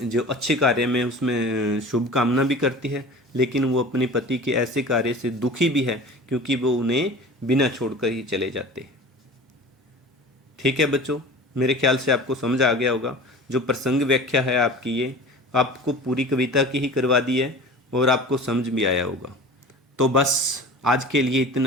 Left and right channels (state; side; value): normal; both; correlation 0.38